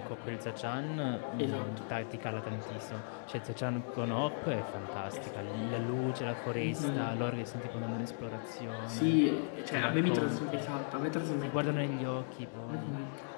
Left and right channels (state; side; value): silent; right; digital silence